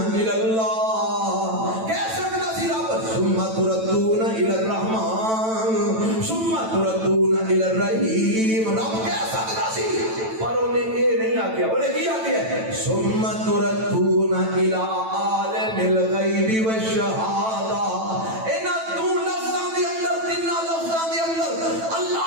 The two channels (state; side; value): late; left; 9.1 ms